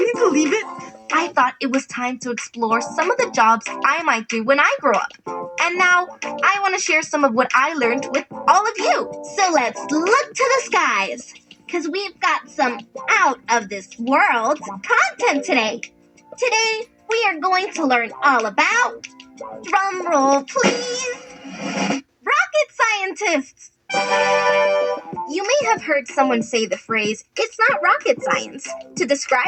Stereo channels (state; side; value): identical; both; correlation 1.00